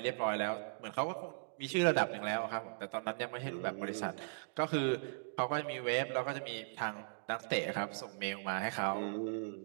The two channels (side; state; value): left; silent; digital silence